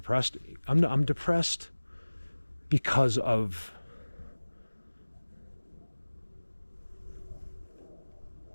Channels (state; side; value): inverted; both; correlation -1.00